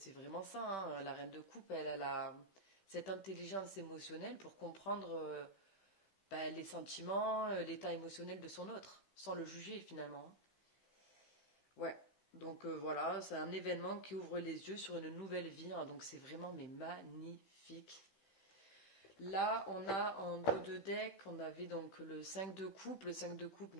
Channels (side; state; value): right; late; 15 ms